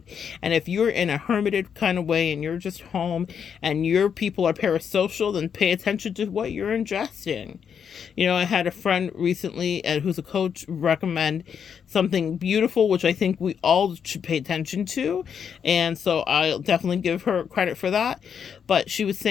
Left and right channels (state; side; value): quieter; right; 7.4 dB